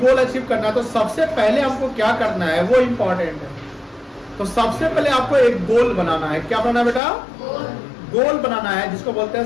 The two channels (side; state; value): right; drops out; at 7.0 s